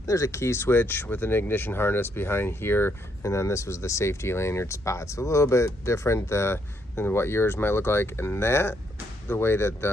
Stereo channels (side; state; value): both; normal; correlation 0.74